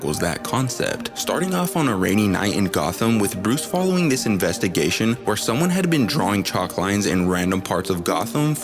that concept, starting off on a rainy night in Gotham with Bruce following this investigation where someone had been drawing chalk lines in random parts of Gotham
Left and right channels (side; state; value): both; identical; correlation 1.00